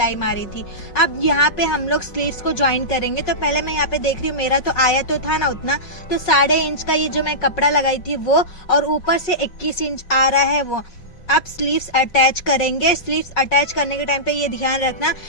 मारी थी। अब यहाँ पे हम लोग स्लीव्स को ज्वाइन करेंगे। तो पहले मैं यहाँ पे देख रही हूँ, मेरा तो आया तो था ना उतना, तो 1.5 इंच का ये जो मैं कपड़ा लगाई थी वो, और ऊपर से 21 इंच आ रहा है वो। अब स्लीव्स अटैच करेंगे। स्लीव्स अटैच करने के टाइम पे ये ध्यान रखना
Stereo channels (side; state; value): right; late; 5.4 ms